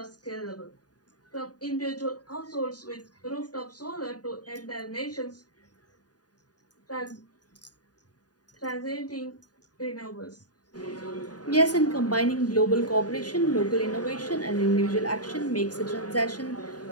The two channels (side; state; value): right; late; 0.68 ms